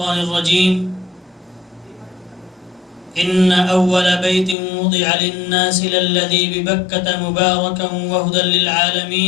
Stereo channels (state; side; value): drops out; right; at 4.5 s